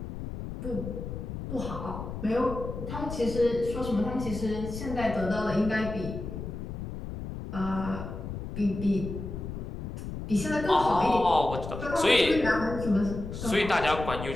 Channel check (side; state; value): left; noise; rumble, 7 dB below the sound